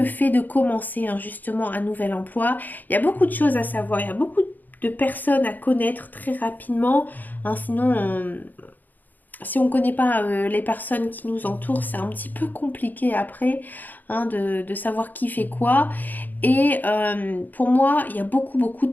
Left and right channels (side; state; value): right; late; 0.085 ms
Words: fait de commencer hein, justement un nouvel emploi. Il y a beaucoup de choses à savoir, il y a beaucoup de personnes à connaître très rapidement. Hein, sinon, si on ne connaît pas les personnes qui nous entourent, c'est un petit peu compliqué après hein, de savoir qui fait quoi. Et pour moi, il y a beaucoup, beaucoup